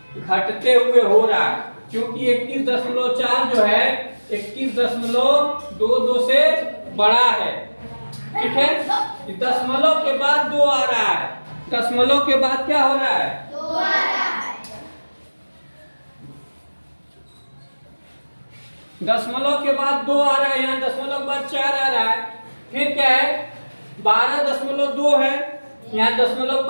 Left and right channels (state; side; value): inverted; both; correlation -1.00